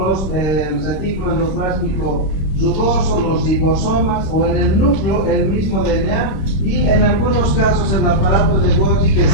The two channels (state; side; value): late; right; 26 ms